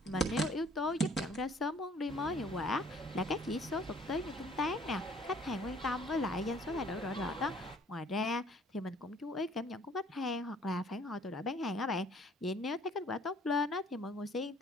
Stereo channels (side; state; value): both; normal; correlation 0.57